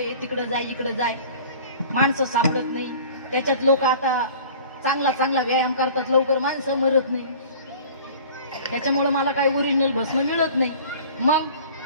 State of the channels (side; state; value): both; inverted; correlation -0.45